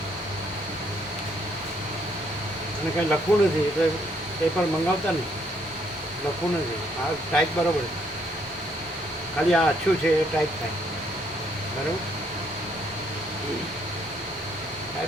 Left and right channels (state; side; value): normal; both; correlation 0.70